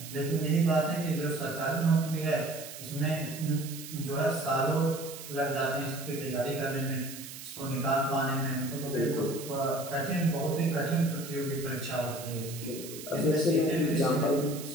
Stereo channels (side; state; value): right; noise; hiss, 12 dB below the sound